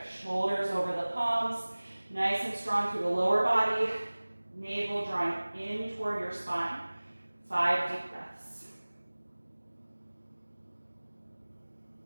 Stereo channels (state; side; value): inverted; both; correlation -1.00